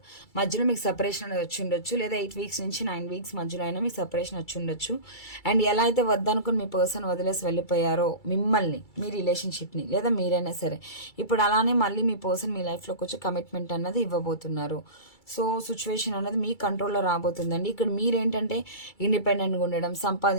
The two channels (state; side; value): late; right; 2.3 ms